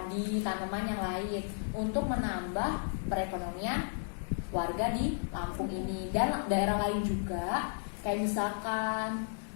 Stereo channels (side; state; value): right; silent; digital silence